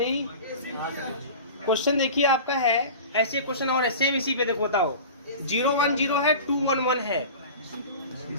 क्वेश्चन देखिए आपका है, ऐसे क्वेश्चन और है सेम इसी पे, देखो बताओ, 0 1 0 है, 2 1 1 है,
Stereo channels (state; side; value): inverted; both; correlation -0.35